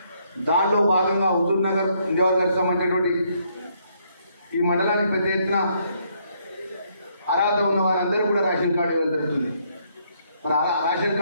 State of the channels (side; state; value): both; inverted; correlation -0.71